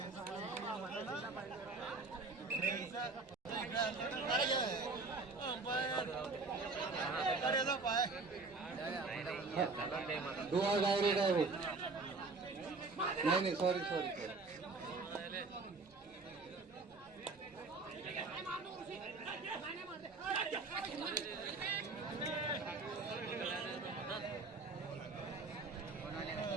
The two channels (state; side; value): quieter; left; 3.8 dB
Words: डोआ डायरेक्ट नाही सॉरी